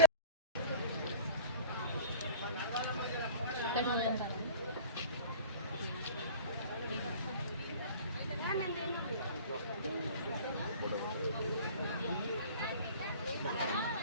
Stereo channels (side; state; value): both; inverted; correlation -0.41